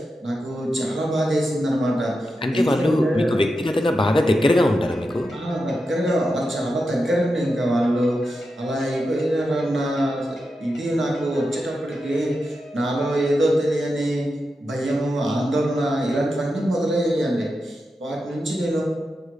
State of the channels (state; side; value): normal; both; correlation 0.88